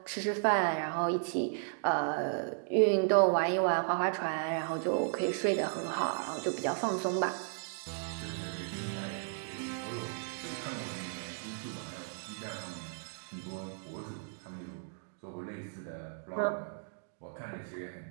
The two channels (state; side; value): silent; left; digital silence